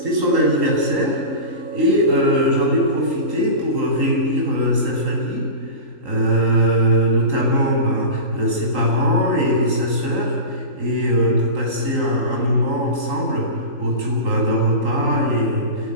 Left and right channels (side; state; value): left; late; 3.8 ms